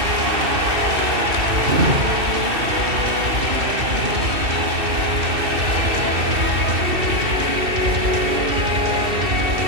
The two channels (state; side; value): late; left; 2.7 ms